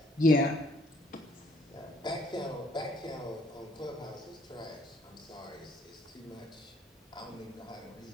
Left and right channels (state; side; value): normal; both; correlation 0.64